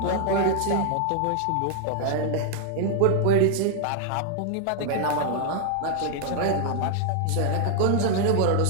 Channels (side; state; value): both; different; correlation 0.00